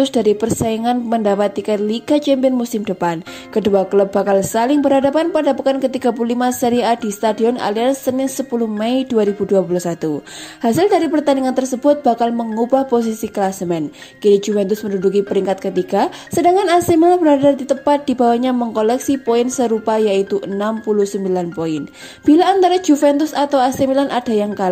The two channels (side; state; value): both; identical; correlation 1.00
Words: dari persaingan mendapat tiket Liga Champions musim depan. Kedua klub bakal saling berhadapan pada pekan ke-35 Serie A di Stadion Allianz Senin 10 Mei 2021. Hasil dari pertandingan tersebut bakal mengubah posisi klasemen. Kini Juventus menduduki peringkat ketiga, sedangkan AC Milan berada di tepat di bawahnya mengkoleksi poin serupa yaitu 69 poin. Bila antara Juventus atau AC Milan ada yang